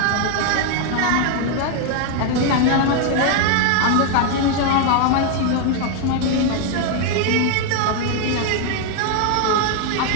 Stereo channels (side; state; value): both; different; correlation 0.00